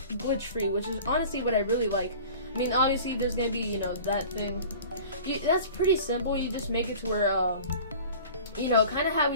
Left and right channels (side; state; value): both; inverted; correlation -0.42